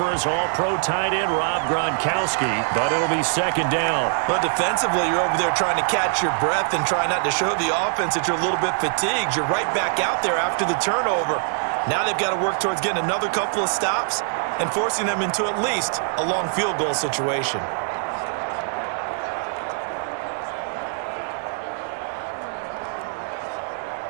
his all-pro tight end, Rob Gronkowski, but it'll be second down. But defensively, you're over there trying to catch your breath and try not to show the offense that you're a little bit fatigued. You're right back out there after the turnover. Now they've got to work towards getting another couple of stops and forcing them into at least a long field goal situation.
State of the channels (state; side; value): silent; left; 57 dB below the other